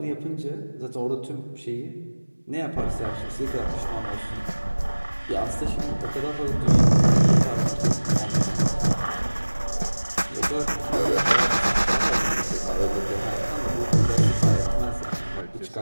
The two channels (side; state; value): both; inverted; correlation -1.00